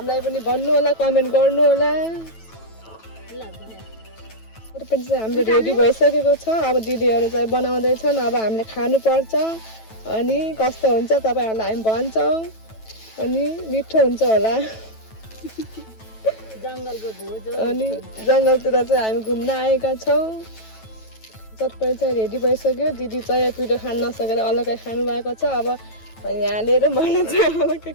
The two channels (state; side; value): late; right; 9.1 ms